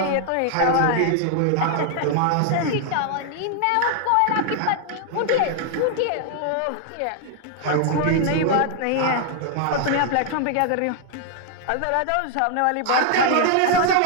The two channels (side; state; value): both; different; correlation 0.00